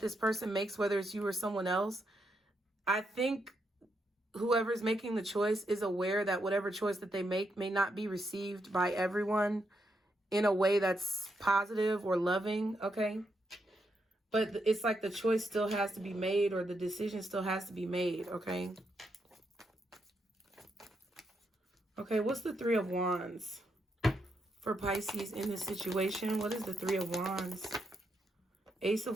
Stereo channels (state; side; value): normal; both; correlation 0.80